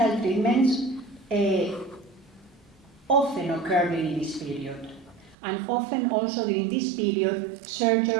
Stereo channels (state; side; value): drops out; left; at 5.4 s